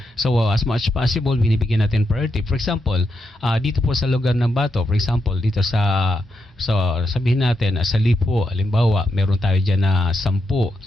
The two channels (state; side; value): normal; both; correlation 0.84